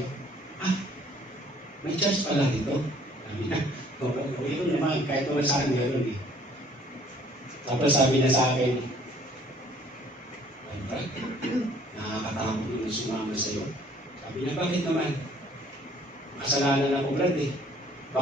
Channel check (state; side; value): normal; both; correlation 0.58